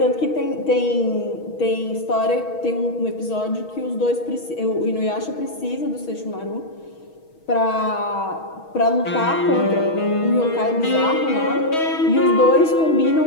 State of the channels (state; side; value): late; right; 6.3 ms